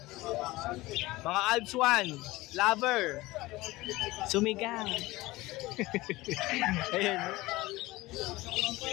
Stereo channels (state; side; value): quieter; right; 19.7 dB